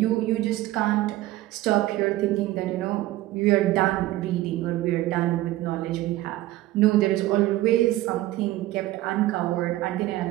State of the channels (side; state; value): left; quieter; 16.3 dB